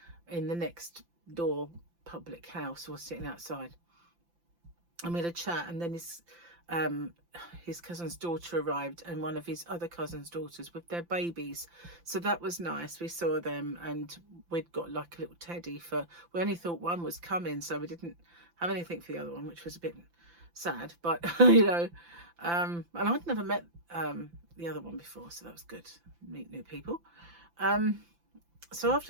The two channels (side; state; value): left; late; 5.8 ms